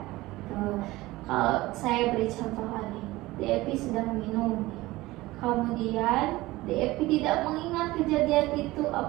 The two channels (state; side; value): quieter; left; 19.0 dB